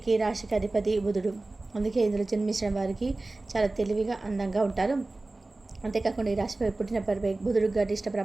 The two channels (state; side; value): quieter; left; 3.0 dB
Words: ఈ రాశికి అధిపతి బుధుడు. అందుకే ఇందులో జన్మించిన వారికి చాలా తెలివిగా అందంగా ఉంటారు. అంతేకాకుండా ఈ రాశిపై పుట్టిన బుధుడు గరిష్ట